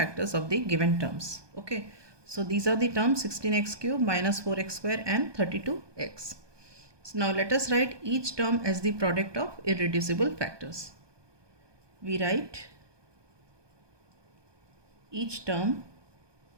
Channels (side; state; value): left; late; 1.2 ms